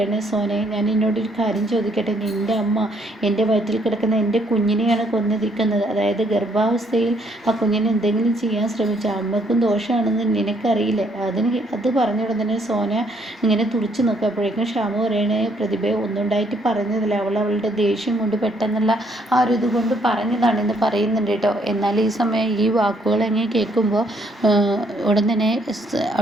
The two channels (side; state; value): both; normal; correlation 0.68